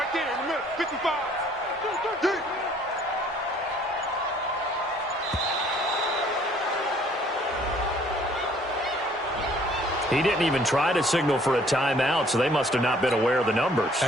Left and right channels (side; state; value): both; normal; correlation 0.59